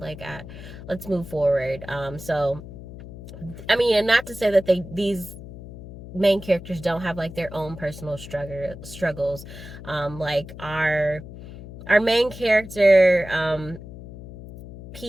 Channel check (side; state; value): left; noise; hum, 14 dB below the sound